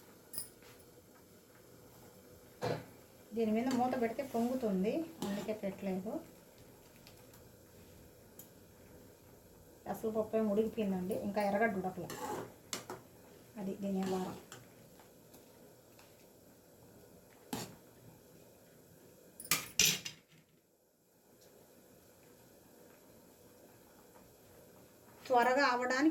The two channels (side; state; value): both; identical; correlation 1.00